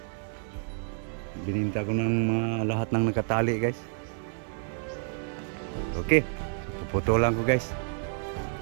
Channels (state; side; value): silent; left; 58 dB below the other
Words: Bininta ko ng mga lahat ng nakatali guys. Okay, puputulan ko guys.